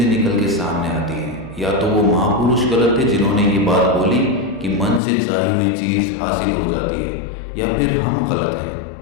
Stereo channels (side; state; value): right; drops out; at 5.0 s